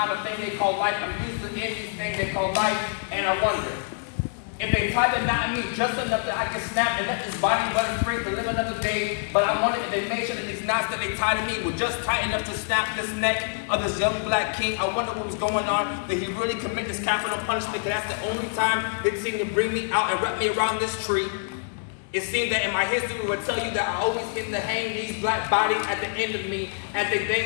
a thing they call life. I'm used to in these things they call life, and I wonder if they tied the knot in me just enough that I can snap and let this body run free to live another day. But I wonder if they made sure that these knots that they tied to me were just tight enough to snap this neck of this young black king. I wonder what was going on. Did he really commit this capital punishment? Because that's the only time they seem to bring me out and wrap me around this tree. It seems that in my history we would tell you that I always get to hang these black bodies at the end of me as they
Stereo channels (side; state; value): right; silent; digital silence